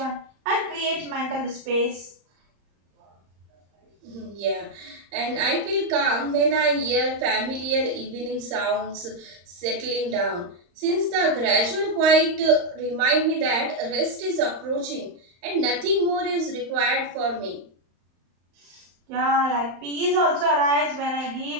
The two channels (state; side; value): late; left; 35 ms